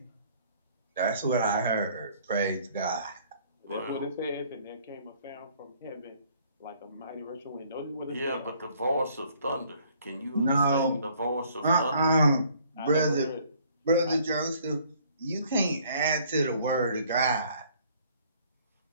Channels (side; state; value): both; inverted; correlation -0.60